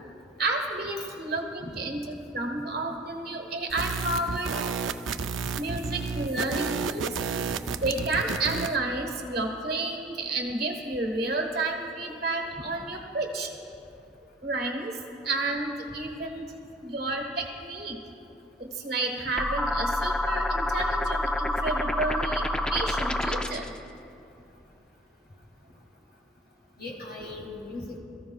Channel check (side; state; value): both; normal; correlation 0.45